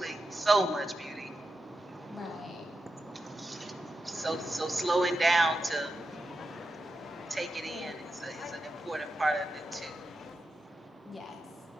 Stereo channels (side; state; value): both; normal; correlation 0.88